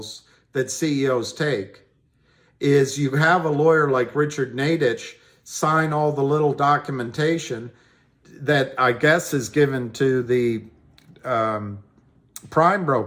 that CEOs take is you have a lawyer like Richard Nadich sign all the little documentation that I guess is given to the prime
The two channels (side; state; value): both; identical; correlation 1.00